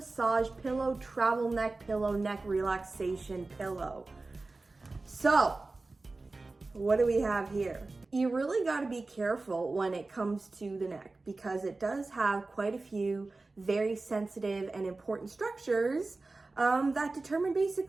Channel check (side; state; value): left; quieter; 3.4 dB